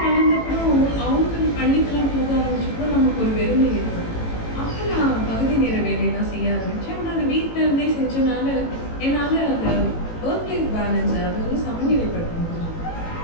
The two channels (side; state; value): right; late; 18 ms